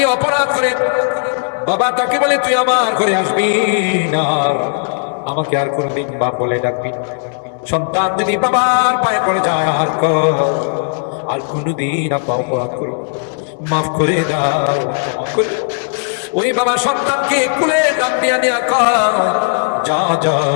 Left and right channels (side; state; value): right; silent; digital silence